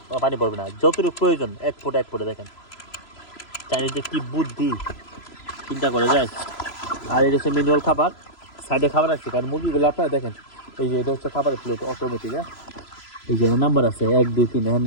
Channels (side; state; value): right; late; 3.0 ms